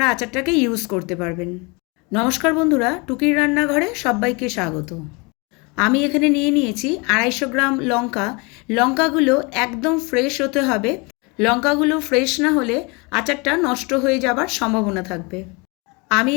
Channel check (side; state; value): right; quieter; 28.8 dB